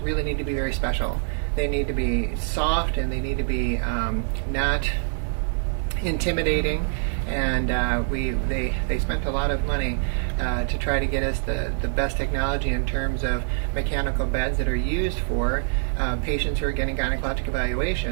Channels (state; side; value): silent; left; digital silence